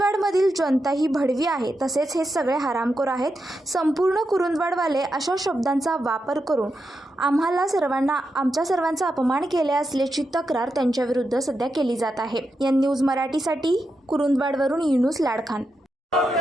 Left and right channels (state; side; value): normal; both; correlation 0.87